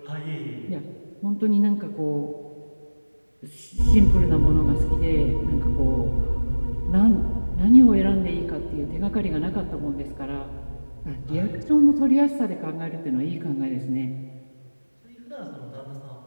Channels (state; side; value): inverted; both; correlation -1.00